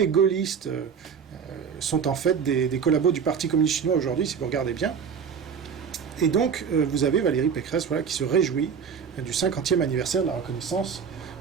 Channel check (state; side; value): quieter; left; 6.7 dB